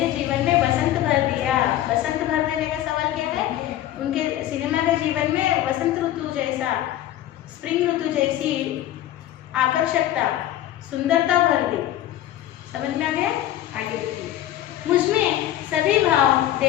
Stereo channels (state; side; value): quieter; right; 13.0 dB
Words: जीवन में बसंत भर दिया। बसंत भर देने का सवाल क्या है? उनके सिनेमा के जीवन में बसंत ऋतु जैसा, स्प्रिंग ऋतु जैसी आकर्षकता, सुंदरता भर दी। समझ में आ गया? आगे देखिए। मुझमें सभी भाव